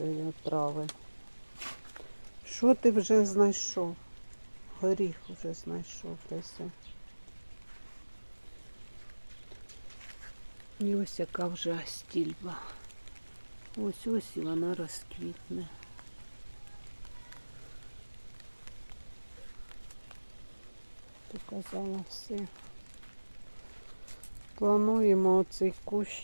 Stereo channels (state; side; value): inverted; both; correlation -1.00